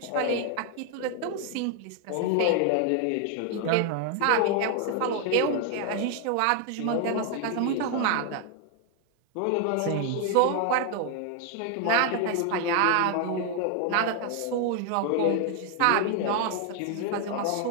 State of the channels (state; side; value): different; both; correlation 0.00